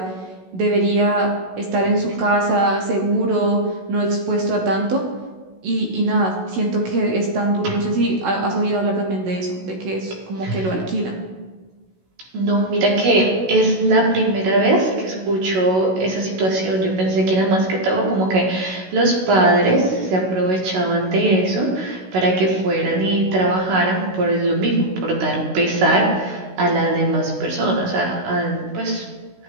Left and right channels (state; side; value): late; left; 16 ms